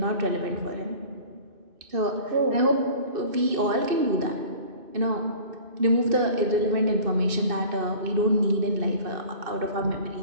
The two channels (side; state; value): left; late; 2.6 ms